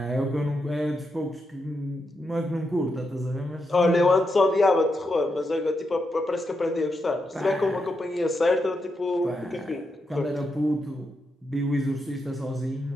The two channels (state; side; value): normal; both; correlation 0.84